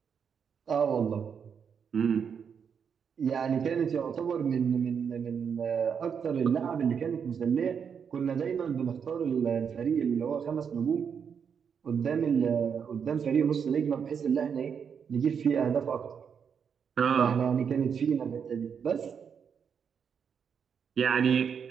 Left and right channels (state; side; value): quieter; left; 7.0 dB